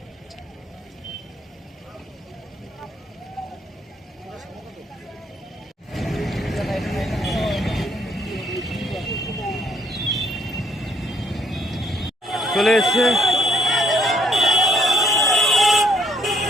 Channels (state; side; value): normal; both; correlation 0.68